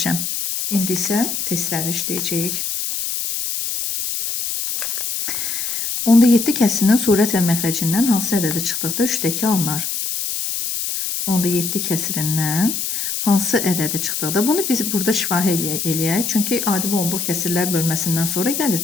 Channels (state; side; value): noise; left; hiss, 2 dB below the sound